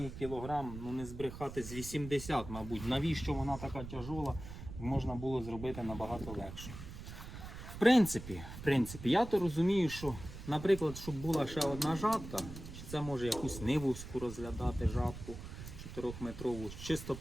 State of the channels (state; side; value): noise; right; rumble, 11 dB below the sound